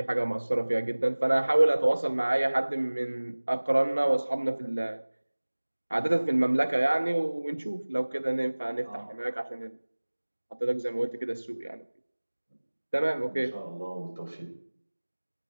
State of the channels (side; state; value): both; inverted; correlation -1.00